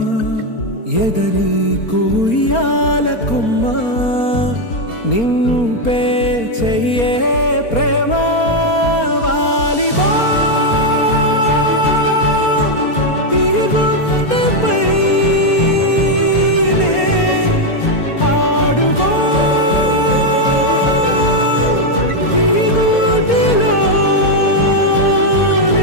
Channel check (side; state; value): right; late; 4.3 ms